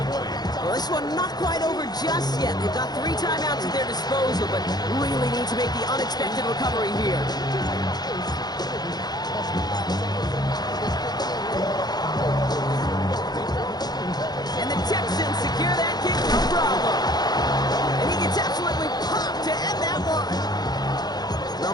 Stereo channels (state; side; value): late; right; 0.19 ms